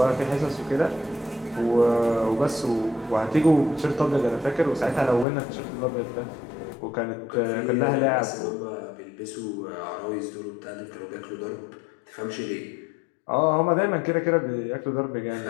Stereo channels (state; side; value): drops out; right; at 5.2 s